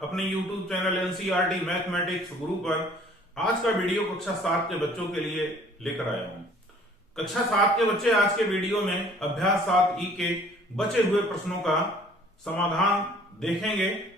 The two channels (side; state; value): both; normal; correlation 0.54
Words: अपने YouTube channel NCERT mathematics गुरु पर आज का वीडियो कक्षा 7 के बच्चों के लिए लेकर आया हूं। कक्षा 7 के बच्चे आज के वीडियो में अभ्यास 7 ई के बचे हुए प्रश्नों का समाधान देखेंगे